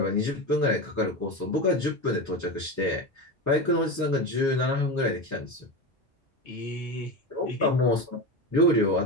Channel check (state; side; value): normal; both; correlation 0.21